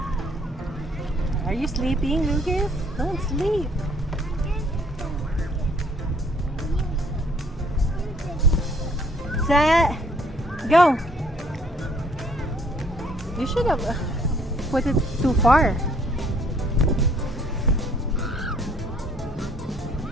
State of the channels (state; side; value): normal; both; correlation 0.62